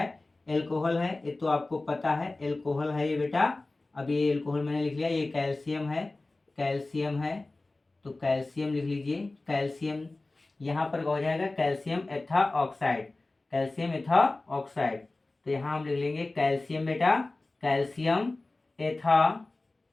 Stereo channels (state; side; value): quieter; right; 3.1 dB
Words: एल्कोहल है, ये तो आपको पता है एल्कोहल है ये बेटा। अब ये एल्कोहल मैंने लिख लिया, ये कैल्शियम है, कैल्शियम है, तो कैल्शियम लिख लीजिए। कैल्शियम यहाँ पर हो जाएगा कैल्शियम एथा ऑक्साइड, कैल्शियम एथा ऑक्साइड। तो यहाँ हम लिख लेंगे कैल्शियम बेटा, कैल्शियम एथा,